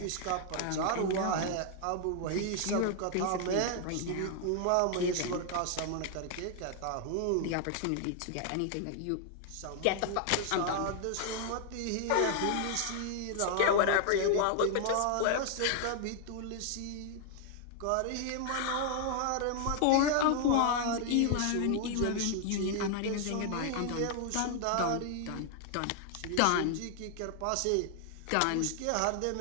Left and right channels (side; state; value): both; different; correlation 0.00